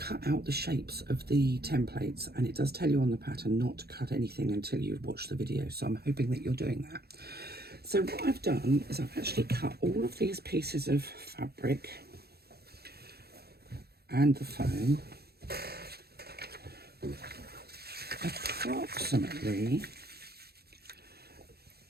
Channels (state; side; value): late; left; 0.46 ms